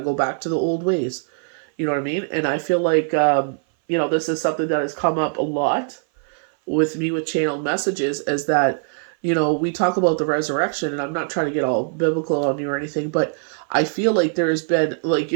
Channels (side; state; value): left; silent; 59 dB below the other